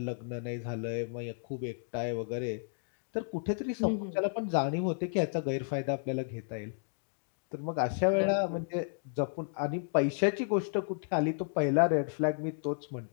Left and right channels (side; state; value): right; silent; digital silence